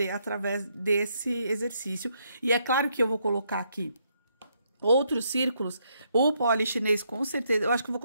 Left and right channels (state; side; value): inverted; both; correlation -0.75